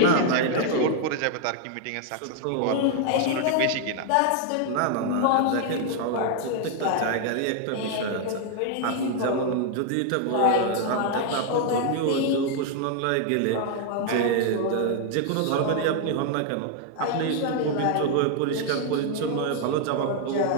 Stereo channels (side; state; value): both; different; correlation 0.00